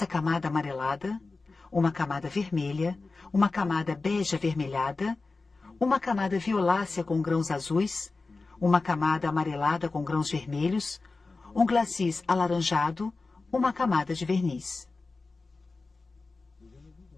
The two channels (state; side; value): quieter; right; 3.8 dB